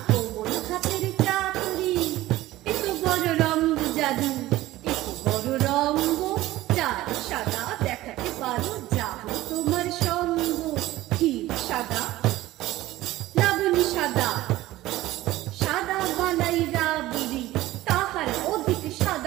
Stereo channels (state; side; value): quieter; left; 16.5 dB